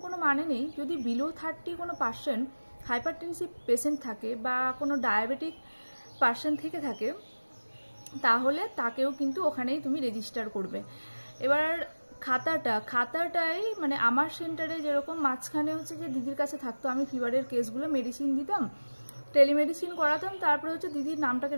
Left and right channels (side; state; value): both; inverted; correlation -1.00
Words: কোনো মানে নেই। যদি বিলো 30 কোনো পার্সন হাইপারটেনসিভ পেশেন্ট থাকে বা কোনো ডায়াবেটিক পার্সন থেকে থাকে, তাহলে তাকেও কিন্তু ওখানেই তুমি রেজিস্টার করবে। এবার খাতাটাই মানে আমার সেন্টারে যেরকম মাঝখানে হচ্ছে যে দিদির কাছে থাকতো, আমি ফিভারের কেসগুলো মেডিসিন দিতাম, টেলিমেডিসিন করাতাম, তারপরে হচ্ছে দিদির নামটাকে